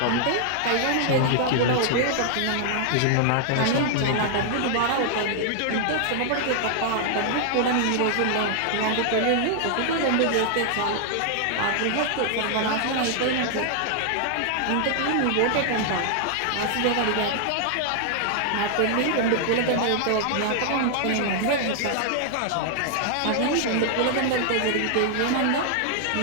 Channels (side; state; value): both; different; correlation 0.00